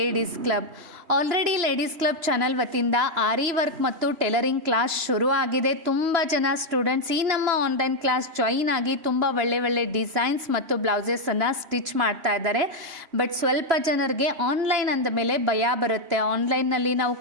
club. Already ladies club channel ವತಿಯಿಂದ ಆರಿ ವರ್ಕ್ ಮತ್ತು ಟೈಲರಿಂಗ್ ಕ್ಲಾಸ್ ಶುರು ಆಗಿದೆ. ತುಂಬ ಜನ ಸ್ಟೂಡೆಂಟ್ಸ್ ಈ ನಮ್ಮ ಆನ್ಲೈನ್ ಕ್ಲಾಸ್ ಜಾಯಿನ್ ಆಗಿ ತುಂಬ ಒಳ್ಳೆ ಡಿಸೈನ್ಸ್ ಮತ್ತು ಬ್ಲೌಸಸನ್ನು ಸ್ಟಿಚ್ ಮಾಡ್ತಾ ಇದ್ದಾರೆ. ಬಟ್ ಸ್ವಲ್ಪ ಜನರಿಗೆ ಆನ್ಲೈನ್ ಅಂದ ಮೇಲೆ ಭಯ ಬರುತ್ತೆ. ಆನ್ಲೈನ್ನಲ್ಲಿ ನಾವು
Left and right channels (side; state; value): left; late; 3.0 ms